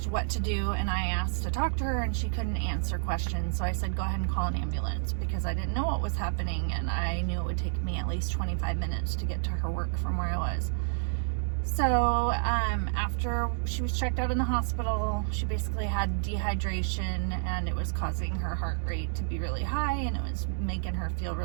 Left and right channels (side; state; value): left; silent; digital silence